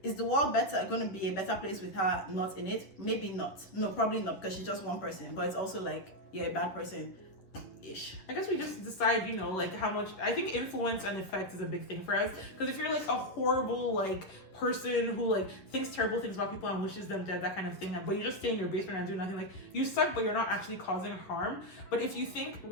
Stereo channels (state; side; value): late; right; 10 ms